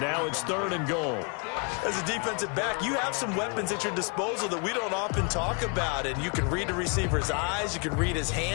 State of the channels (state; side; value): quieter; right; 36.0 dB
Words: now it's 3rd and goal. As a defensive back, you have some weapons at your disposal that we don't often talk about. And you can read the receiver's eyes, you can read his